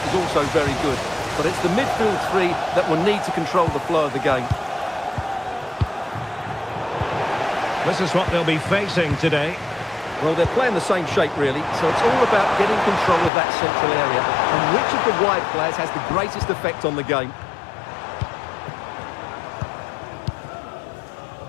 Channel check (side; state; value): right; drops out; at 13.3 s